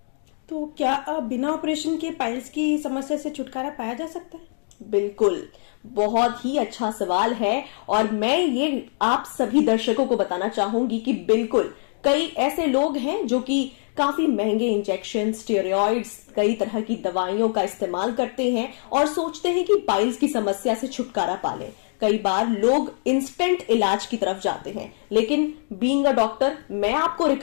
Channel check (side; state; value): right; silent; 63 dB below the other